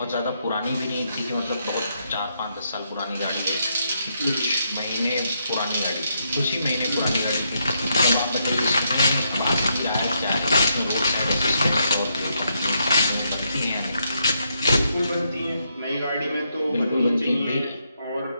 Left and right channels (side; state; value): both; inverted; correlation -0.78